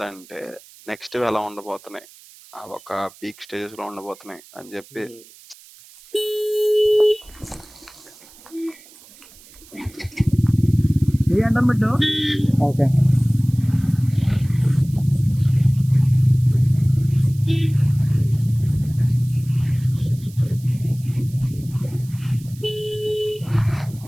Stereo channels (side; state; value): right; noise; hiss, 23 dB below the sound